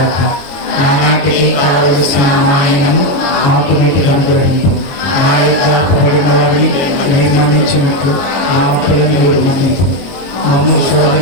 నానాటికి కావలసిన మాయనము మాకు నీటికి అనుగ్రహింపు. మా యొక్క అప్పుబడిన వారిని మీరు మన్నించినట్లు మా అప్పులను మీరు మన్నింపు. మమ్ము శోధన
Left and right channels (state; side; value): late; right; 22 ms